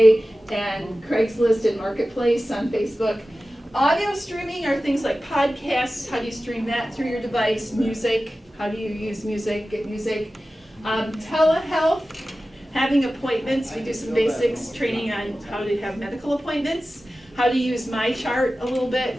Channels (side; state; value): both; normal; correlation 0.95